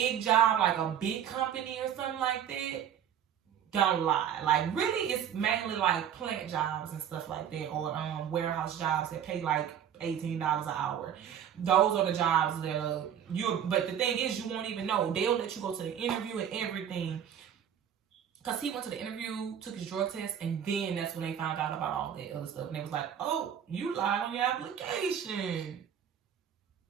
job, like a big company or something like that, don't lie. Like, really, it's mainly like plant jobs and stuff like that, or warehouse jobs that pay like $18 an hour. Those are the jobs that but the thing is, you won't even know. They'll let you go to the interview and everything. Because he went to the interview, took his drug test, and then that's when they found out about all that other stuff. And they was like, oh, you lied on your application.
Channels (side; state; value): left; quieter; 9.2 dB